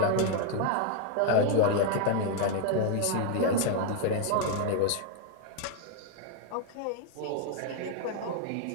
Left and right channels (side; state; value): both; different; correlation 0.00